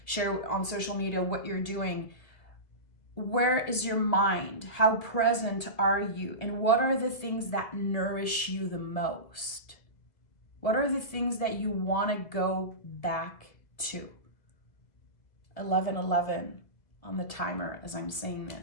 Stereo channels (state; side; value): late; right; 1.7 ms